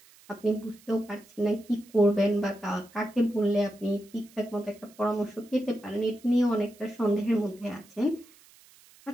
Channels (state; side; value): noise; right; hiss, 26 dB below the sound